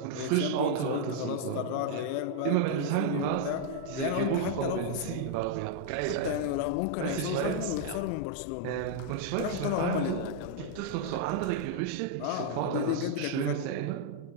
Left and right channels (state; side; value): different; both; correlation -0.01